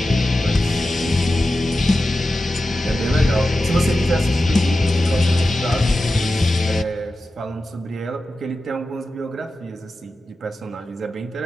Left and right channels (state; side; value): normal; both; correlation 0.93